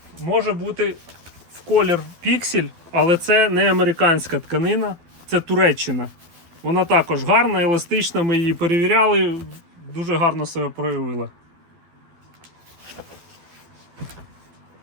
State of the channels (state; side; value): late; left; 12 ms